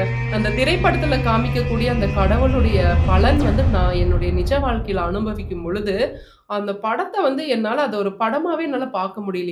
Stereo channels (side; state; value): both; identical; correlation 1.00